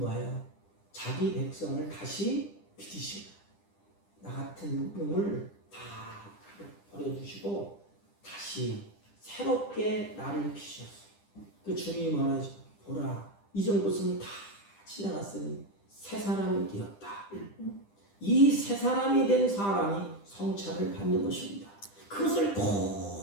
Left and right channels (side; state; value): right; late; 10 ms